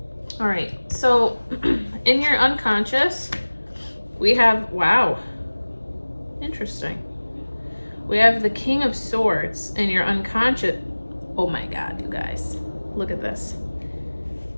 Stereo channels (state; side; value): inverted; both; correlation -1.00